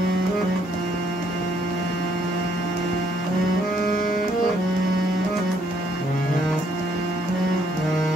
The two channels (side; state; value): both; normal; correlation 0.69